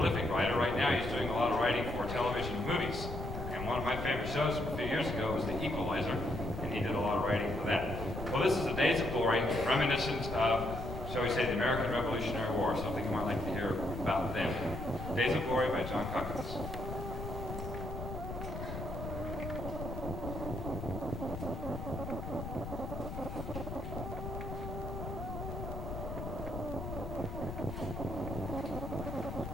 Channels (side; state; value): left; noise; rumble, 7 dB below the sound